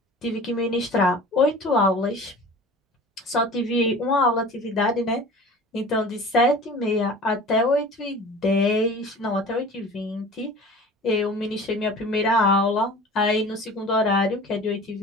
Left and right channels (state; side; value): normal; both; correlation 0.41